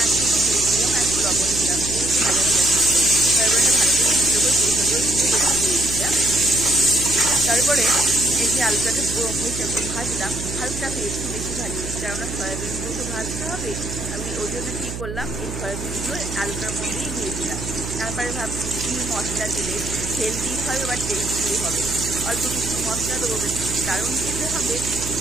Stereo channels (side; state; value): right; noise; hum, 7 dB below the sound